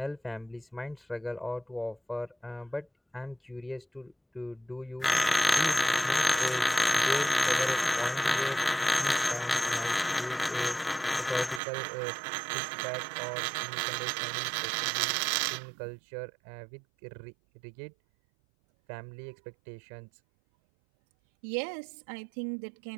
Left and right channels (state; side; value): drops out; left; at 11.6 s